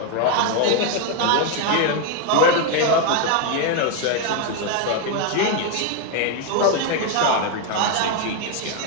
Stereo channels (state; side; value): different; both; correlation 0.01